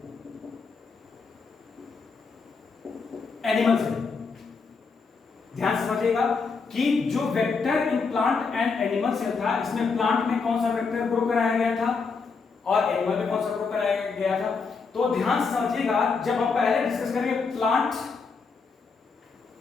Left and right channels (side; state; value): right; quieter; 4.9 dB